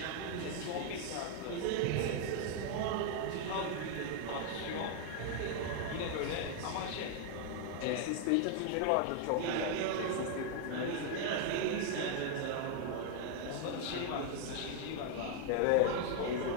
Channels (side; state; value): both; different; correlation 0.00